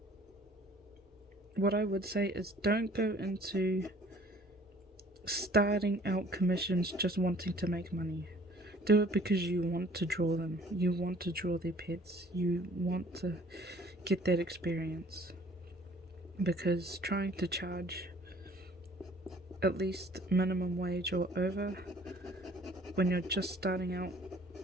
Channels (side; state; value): both; normal; correlation 0.54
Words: what I would say is, don't go into starting out commissions just wanting to make money. Do it because you want to draw them. You want to draw their pets. You want to get that experience. Because trying to charge at least minimum wage or over when you're just starting out